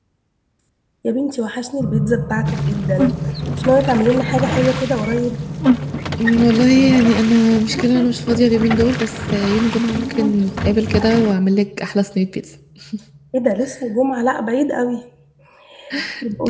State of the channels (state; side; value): identical; both; correlation 1.00